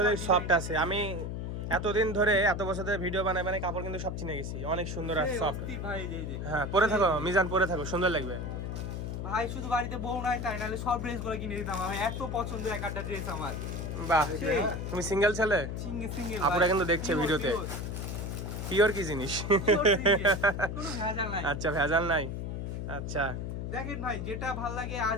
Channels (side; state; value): left; noise; hum, 4 dB below the sound